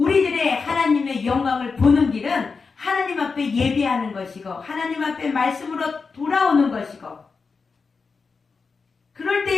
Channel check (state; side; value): quieter; right; 4.8 dB